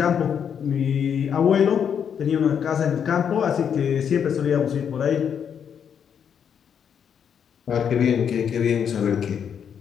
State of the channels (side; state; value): right; quieter; 7.8 dB